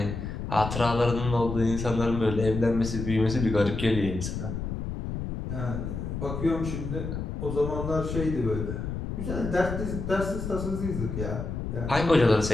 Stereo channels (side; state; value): left; noise; rumble, 5 dB below the sound